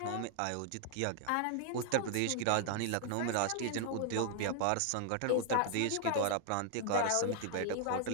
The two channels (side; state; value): both; different; correlation 0.00